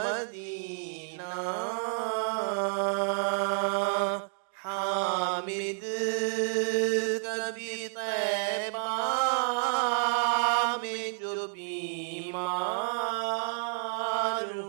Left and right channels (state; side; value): silent; left; 58 dB below the other